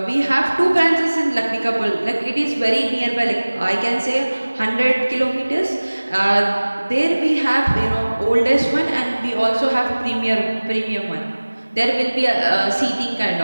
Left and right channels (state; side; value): inverted; both; correlation -1.00